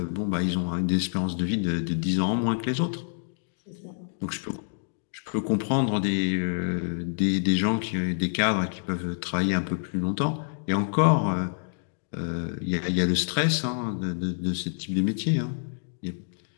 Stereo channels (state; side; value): silent; right; digital silence